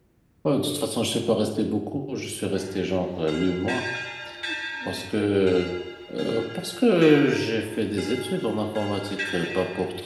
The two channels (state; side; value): identical; both; correlation 1.00